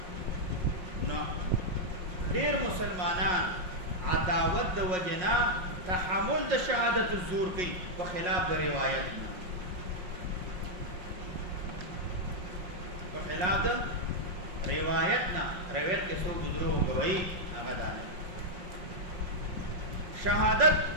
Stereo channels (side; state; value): left; late; 5.5 ms